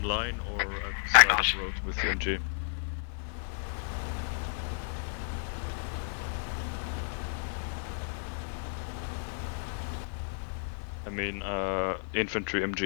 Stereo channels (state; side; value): silent; right; 56 dB below the other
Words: line or at the side of the road with MG? I mean, infantry